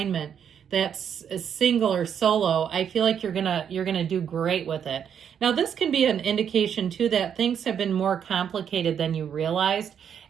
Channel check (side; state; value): left; quieter; 8.2 dB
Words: that's single or solo, I feel like you're gonna do great with it. Now, this can be an indication too that things have been more complicated than you realized,